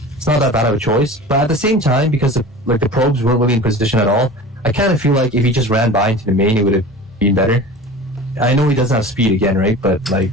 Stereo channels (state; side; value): normal; both; correlation 0.37